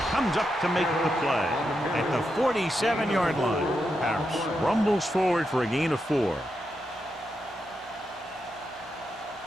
comes up to make the play at the 47-yard line. Harris rumbles forward for a gain of 4.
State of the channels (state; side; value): normal; both; correlation 0.85